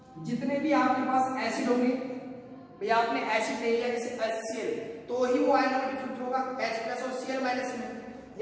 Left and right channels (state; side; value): identical; both; correlation 1.00